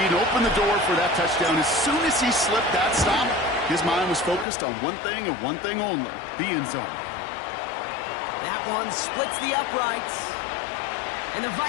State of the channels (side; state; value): right; drops out; at 4.5 s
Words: to open the door for that touchdown. As soon as he slipped that stop, his mind was focused on one thing and one thing only, the end zone. That one splits the uprights. And the